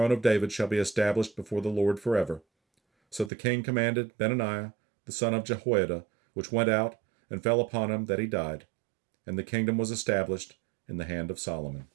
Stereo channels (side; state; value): left; drops out; at 3.3 s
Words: of David shall be established before the Lord forever. So the king commanded Benaiah the son of Jehoiada, which went out and fell upon him, that he died. And the kingdom was established in the hand of Solomon.